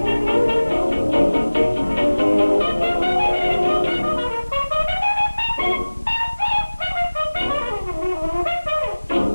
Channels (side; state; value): both; inverted; correlation -1.00